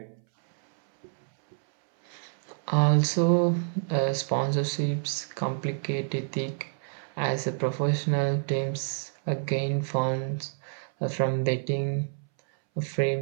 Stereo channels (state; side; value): silent; left; 59 dB below the other